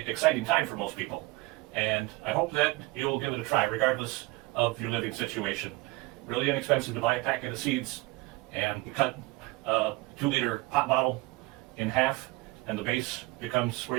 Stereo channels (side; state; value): left; quieter; 22.3 dB